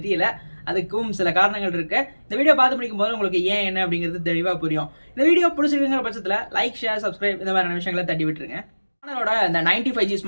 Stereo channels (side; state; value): both; inverted; correlation -1.00